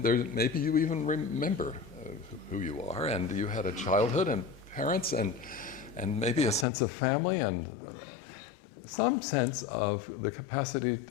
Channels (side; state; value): right; drops out; at 6.7 s